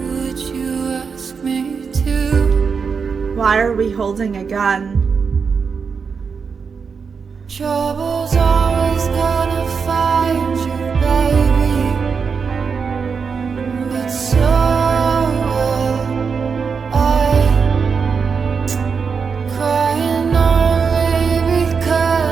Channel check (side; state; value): left; quieter; 5.7 dB